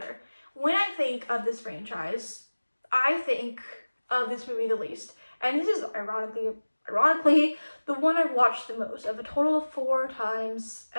When I think of this franchise, I think of this movie the least. And this is ironically, the one I've watched the most, of a total of 4 times,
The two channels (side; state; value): both; inverted; correlation -1.00